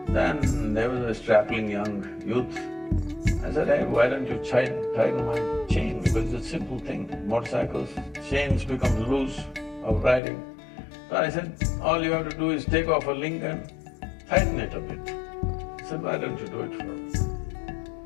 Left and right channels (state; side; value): drops out; right; at 10.2 s